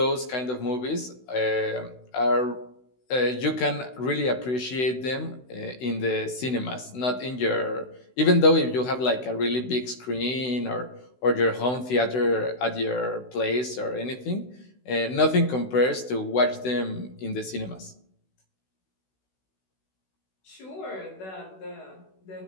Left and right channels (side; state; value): right; late; 16 ms